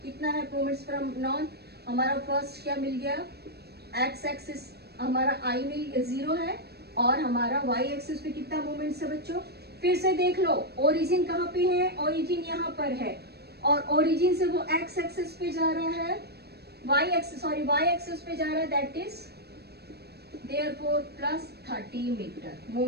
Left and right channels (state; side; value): late; left; 0.47 ms